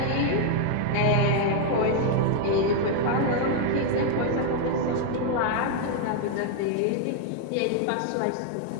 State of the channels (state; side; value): different; both; correlation 0.00